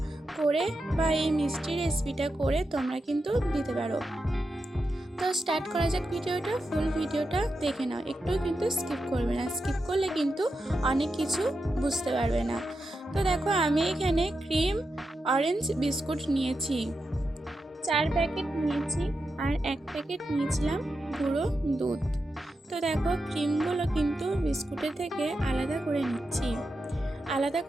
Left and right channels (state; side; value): normal; both; correlation 0.88